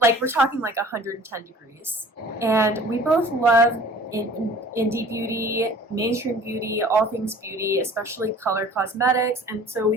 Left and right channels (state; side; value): normal; both; correlation 0.47